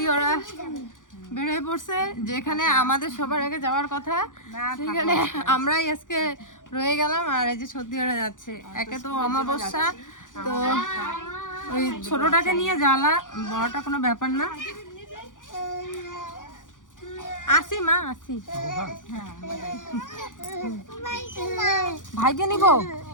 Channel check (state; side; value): late; right; 0.88 ms